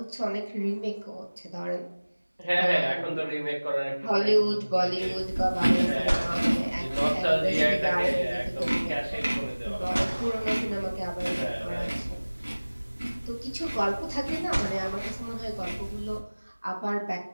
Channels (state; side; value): inverted; both; correlation -1.00